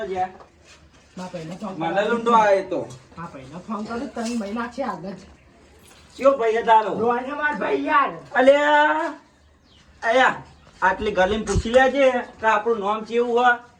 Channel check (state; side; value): identical; both; correlation 1.00